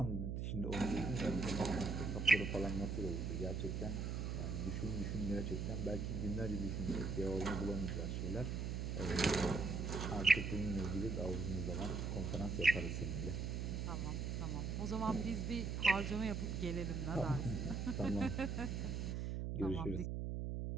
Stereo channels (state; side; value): noise; right; hum, 2 dB below the sound